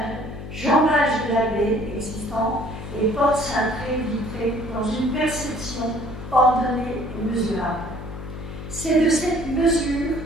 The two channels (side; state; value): left; noise; hum, 10 dB below the sound